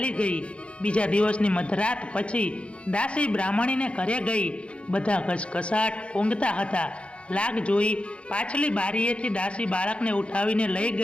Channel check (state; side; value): late; right; 0.060 ms